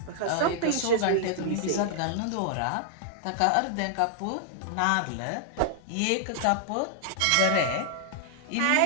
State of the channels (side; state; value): both; different; correlation -0.01